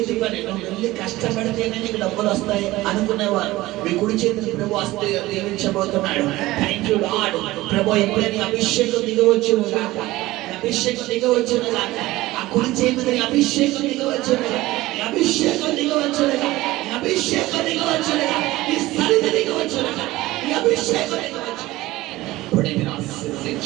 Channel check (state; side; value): quieter; left; 18.1 dB